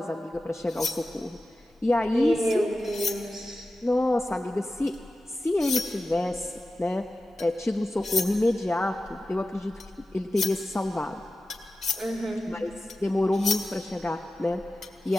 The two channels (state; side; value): normal; both; correlation 0.94